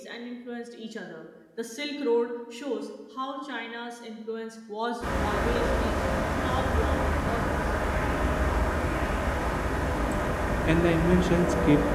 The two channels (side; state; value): both; identical; correlation 1.00